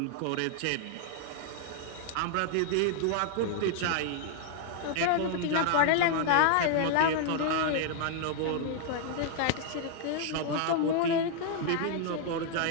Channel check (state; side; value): different; both; correlation -0.01